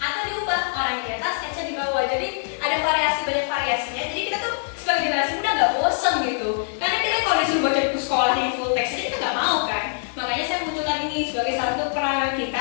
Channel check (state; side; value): silent; right; digital silence